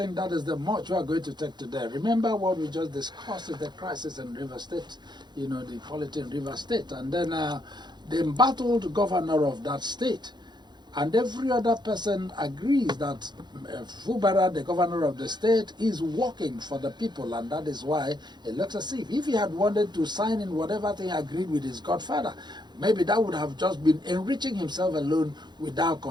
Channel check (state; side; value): late; left; 0.21 ms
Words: that is the much we are going to take today. Remember what we just discussed is the crisis in River State, you know, the polity in River State. And then the embattled governor of that state and every other person agrees that Fubara, the governor of the state, is working for the people. And that is why it looks as if he had wanted to sign in whatever thing agreed with his godfather, maybe that would have just been enriching himself alone without